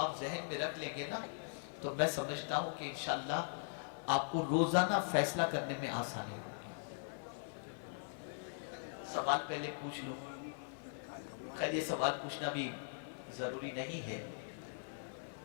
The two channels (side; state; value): right; silent; digital silence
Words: ذہن میں رکھ لیں گے نا تو میں سمجھتا ہوں کہ انشاءاللہ آپ کو روزانہ فیصلہ کرنے میں آسانی ہوگی۔ سوال پہلے پوچھ لوں، خیر یہ سوال پوچھنا بھی ضروری نہیں ہے